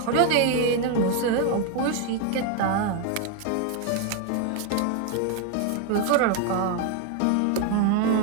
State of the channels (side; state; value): both; different; correlation 0.01